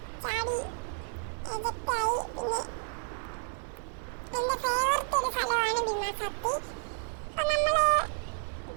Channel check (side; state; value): left; silent; 57 dB below the other